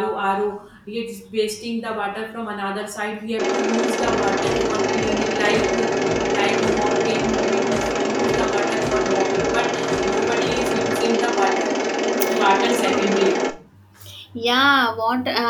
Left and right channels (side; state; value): both; identical; correlation 1.00